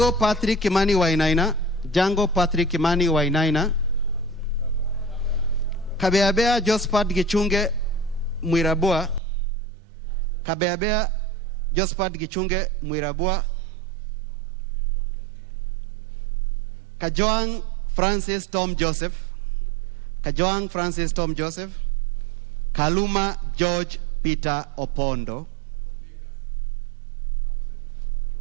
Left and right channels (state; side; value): drops out; left; at 9.2 s